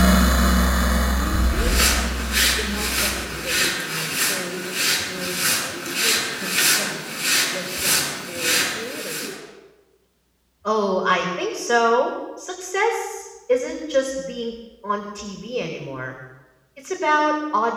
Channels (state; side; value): identical; both; correlation 1.00